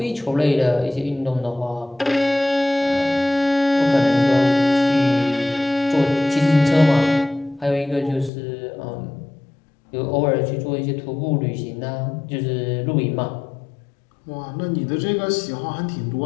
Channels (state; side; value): drops out; right; at 8.3 s